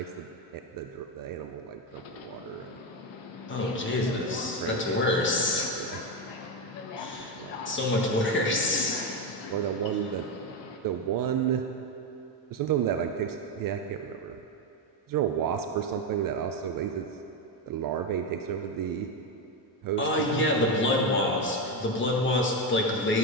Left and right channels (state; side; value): normal; both; correlation 0.10